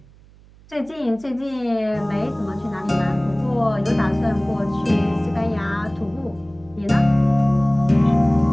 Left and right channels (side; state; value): right; noise; hum, 26 dB below the sound